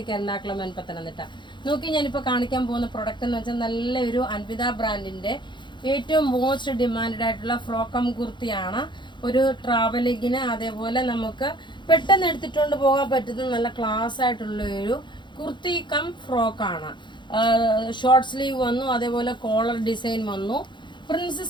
എറണാകുളം പത്തനംതിട്ട. നോക്കി ഞാനിപ്പോൾ കാണിക്കാൻ പോകുന്ന പ്രൊഡക്റ്റ് എന്ന് വെച്ചാൽ നല്ലൊരു അൻവിത ബ്രാൻഡിന്റെ ഏറ്റവും മോസ്റ്റ് ഡിമാൻഡ് ആയിട്ടുള്ള ഫ്രോക്കം കുർത്തിയാണ്. ഒരു ട്രാവലിങ്ങിന് അതേപോലെ നമുക്ക് പെട്ടെന്ന് എടുത്തിട്ടുകൊണ്ട് പോകാൻ പറ്റുന്ന നല്ല ക്ലാസ് ആയിട്ടുള്ള ഒരു കുർത്തി കം ഫ്രോക്കാണ്. ഷോർട്ട് സ്ലീവ് വന്നു, അതേപോലെ കോളർ ഡിസൈൻ വന്നു.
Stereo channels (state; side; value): late; right; 0.23 ms